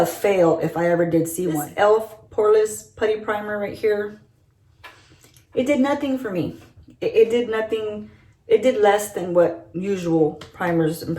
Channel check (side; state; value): both; identical; correlation 1.00